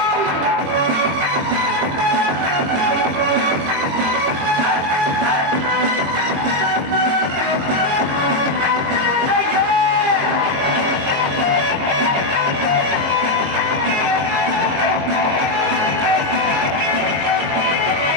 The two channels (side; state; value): left; late; 22 ms